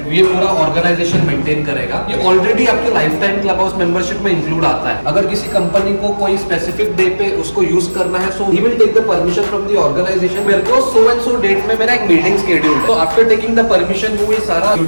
ये पूरा ऑर्गेनाइजेशन मेंटेन करेगा। ये ऑलरेडी आपके life time club house membership में इंक्लूड आता है। अगर किसी कंपनी को कोई स्पेसिफिक डे पे उसको यूज करना है, so he will take the permission from the organisation. मेरे को सो एंड सो डेट में मेरा एक मीटिंग शेड्यूल है, तो आफ्टर टेकिंग द परमिशन वो ये सारा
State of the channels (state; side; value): inverted; both; correlation -1.00